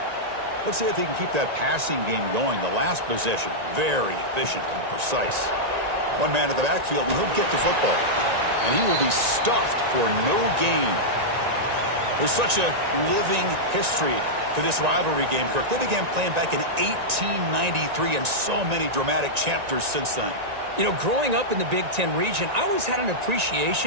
Let's see if he can keep that passing game going. The last possession, very efficient and precise. One man at the backfield, and he'll get the football. And he will be stuffed for no gain. There's such a living history to this rivalry game, Kirk. They began playing back in 1893, and so many dramatic chapters since then. You know, growing up in the Big Ten region, I always had an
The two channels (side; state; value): left; late; 1.9 ms